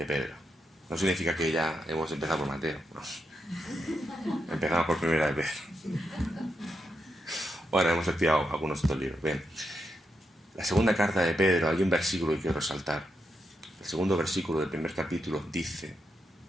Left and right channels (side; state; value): both; normal; correlation 0.84